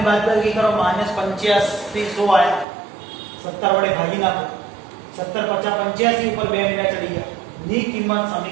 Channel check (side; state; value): left; drops out; at 2.7 s